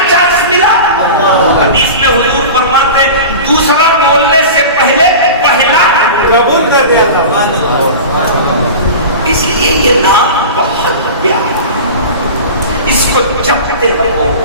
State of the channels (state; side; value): inverted; both; correlation -0.32